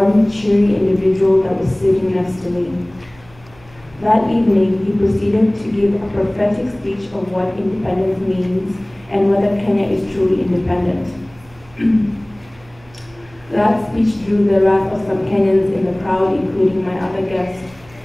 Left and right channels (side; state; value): right; noise; hum, 26 dB below the sound